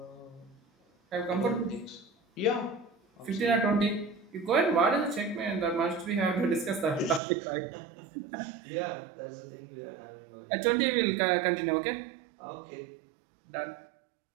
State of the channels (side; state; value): left; drops out; at 7.2 s